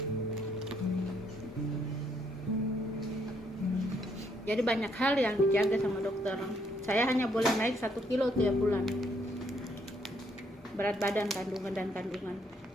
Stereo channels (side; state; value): both; normal; correlation 0.71